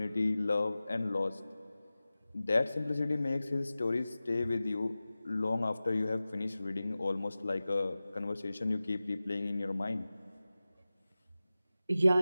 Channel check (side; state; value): both; inverted; correlation -0.96